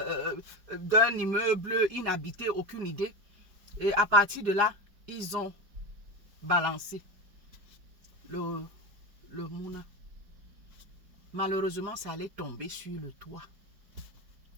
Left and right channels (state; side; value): late; left; 5.0 ms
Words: immeuble inhabité, aucune idée. Et à partir de là, ils ont balancé le Mouna. Malheureusement, ça allait tomber sur le toit